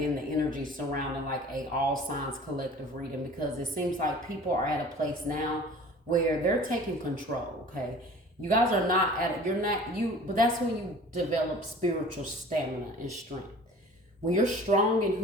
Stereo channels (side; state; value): both; normal; correlation 0.45